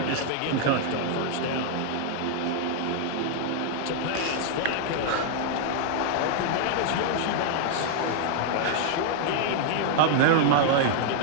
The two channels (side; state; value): both; different; correlation -0.01